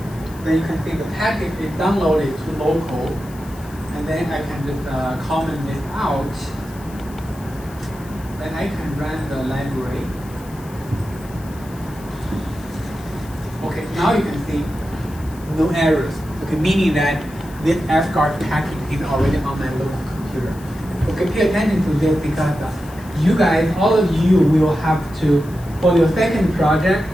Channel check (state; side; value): noise; left; hiss, 22 dB below the sound